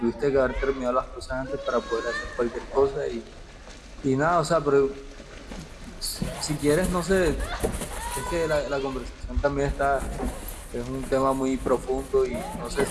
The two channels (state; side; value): identical; both; correlation 1.00